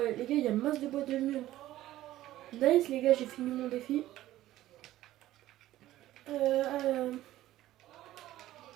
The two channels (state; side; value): quieter; left; 14.7 dB